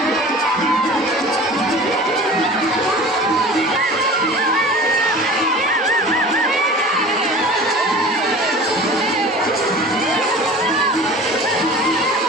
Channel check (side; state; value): both; normal; correlation 0.40